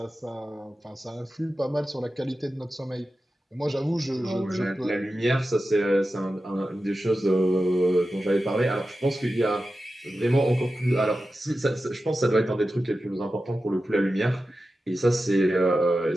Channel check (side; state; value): both; normal; correlation 0.93